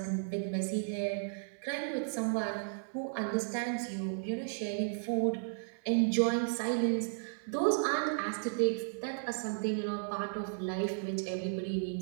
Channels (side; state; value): left; silent; digital silence